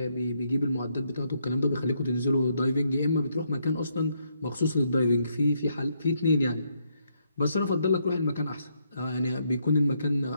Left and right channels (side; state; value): both; inverted; correlation -0.76